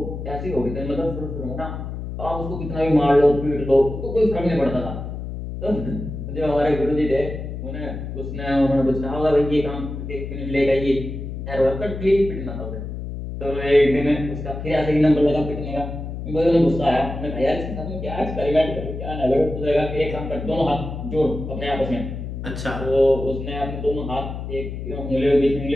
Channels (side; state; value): left; noise; hum, 7 dB below the sound